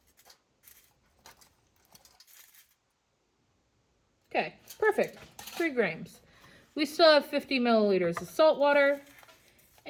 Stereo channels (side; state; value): both; identical; correlation 1.00